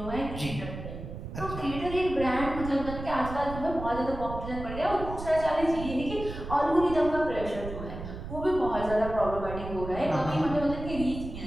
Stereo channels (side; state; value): right; noise; rumble, 9 dB below the sound